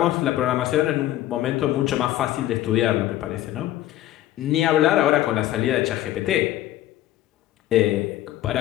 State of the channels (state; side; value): quieter; right; 14.1 dB